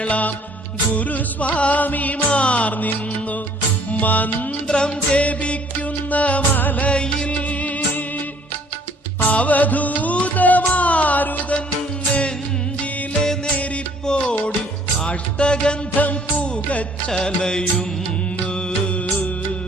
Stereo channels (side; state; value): both; normal; correlation 0.58